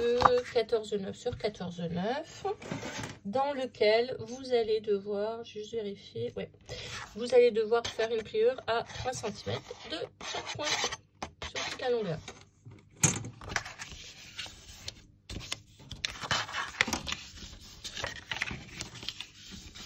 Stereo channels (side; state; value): both; identical; correlation 1.00